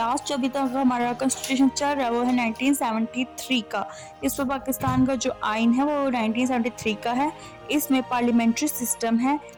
जो अभी तक हमारा कॉन्स्टिट्यूशन चल रहा है वो है 1973 का। इस पर पाकिस्तान का जो आइन है वो 1973 का है, इसमें पार्लियामेंट्री सिस्टम है,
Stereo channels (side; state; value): both; identical; correlation 1.00